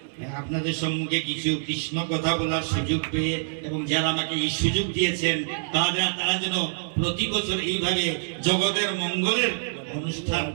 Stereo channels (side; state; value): left; silent; digital silence